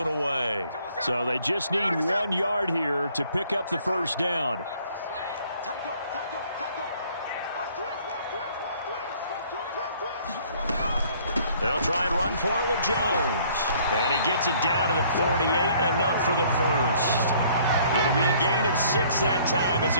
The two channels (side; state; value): both; inverted; correlation -0.59